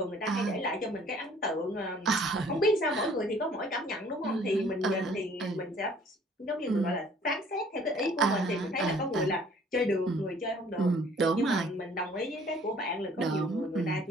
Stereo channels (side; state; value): both; normal; correlation 0.56